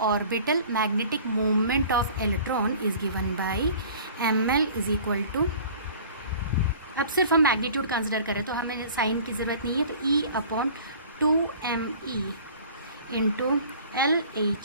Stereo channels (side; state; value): both; inverted; correlation -0.46